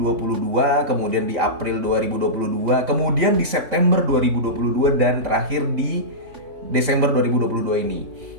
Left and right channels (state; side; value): late; left; 3.6 ms